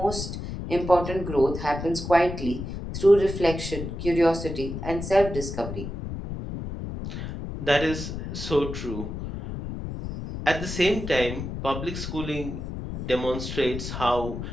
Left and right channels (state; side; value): noise; left; rumble, 7 dB below the sound